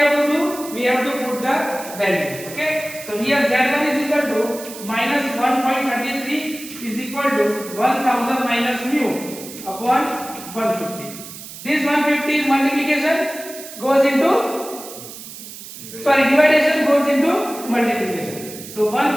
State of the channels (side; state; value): right; noise; hiss, 13 dB below the sound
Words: to do? We have to put the value. Okay. So here Z1 is equal to minus 1.33 is equal to 1000 minus mu upon 150. This 150 is multiplication goes into dividation goes into multiplication. So